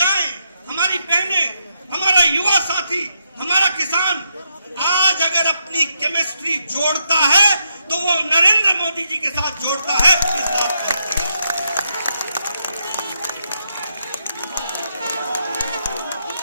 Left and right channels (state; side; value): inverted; both; correlation -0.81